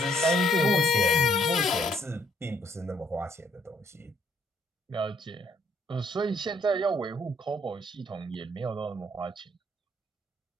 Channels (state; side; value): normal; both; correlation 0.66